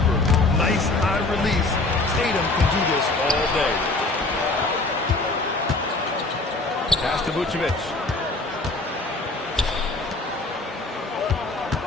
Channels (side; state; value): right; quieter; 3.2 dB